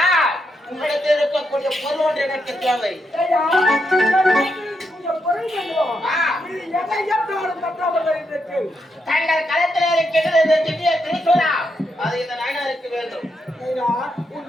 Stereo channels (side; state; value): both; normal; correlation 0.82